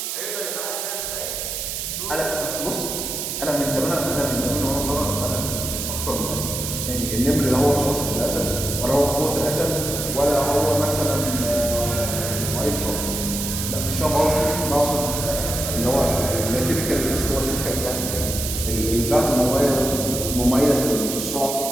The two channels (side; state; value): right; noise; hiss, 4 dB below the sound